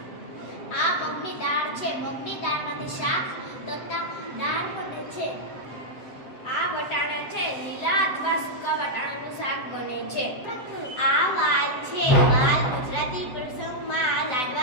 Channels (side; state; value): right; late; 7.8 ms